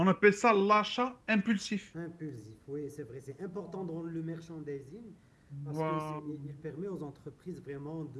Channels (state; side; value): identical; both; correlation 1.00